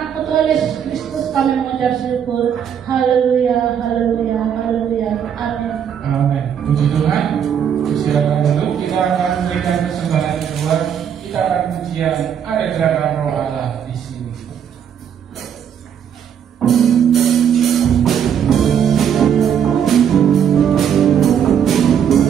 Anak Tuhan Yesus Kristus kami mengucap syukur. Haleluya, haleluya, haleluya. Amin. Amin. Puji Tuhan. Silakan dulu, kita akan memberikan persembahan kedua. Kita akan pujian ada gerakan Roh Allah di sini.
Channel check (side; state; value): left; quieter; 8.5 dB